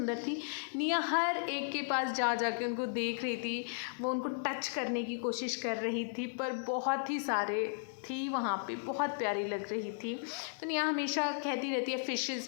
थी। निया हर एक के पास जा के उनको देख रही थी, वो उनको टच करने की कोशिश कर रही थी, पर बहुत ही सारे थी वहाँ पे, बहुत प्यारी लग रही थी। तो निया हमेशा कहती रहती है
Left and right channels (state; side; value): silent; right; digital silence